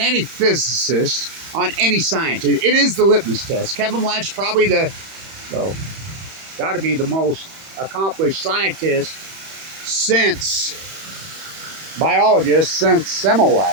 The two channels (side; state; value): left; late; 31 ms